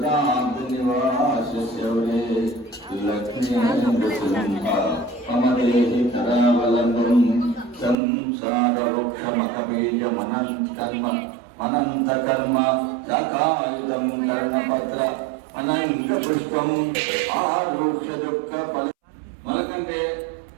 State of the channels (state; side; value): drops out; left; at 8.0 s